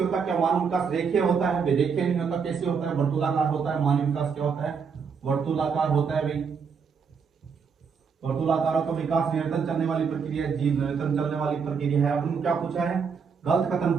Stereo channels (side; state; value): left; quieter; 6.0 dB